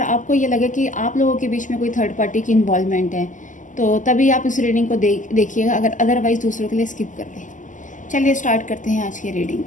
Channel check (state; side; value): late; right; 0.37 ms